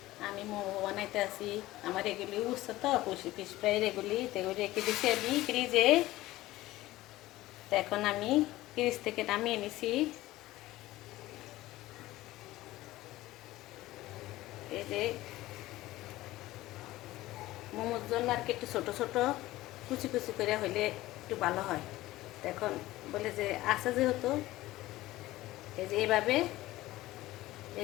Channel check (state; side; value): quieter; right; 17.1 dB